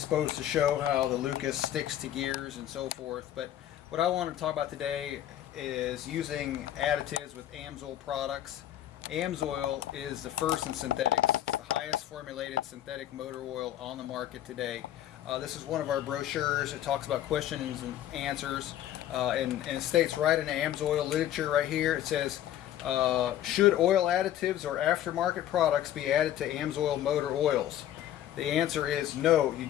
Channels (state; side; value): quieter; right; 12.0 dB